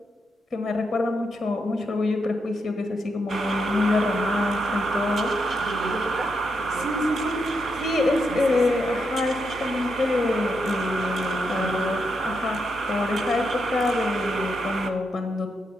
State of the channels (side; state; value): both; normal; correlation 0.82